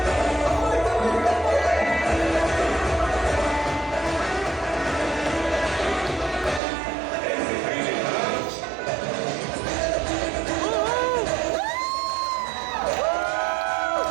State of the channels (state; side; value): drops out; left; at 6.6 s